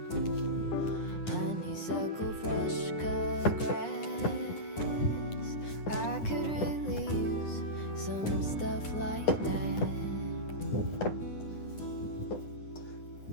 honeysuckle, fresh cut grass. I could really use some stuff like that.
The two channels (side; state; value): right; late; 9.9 ms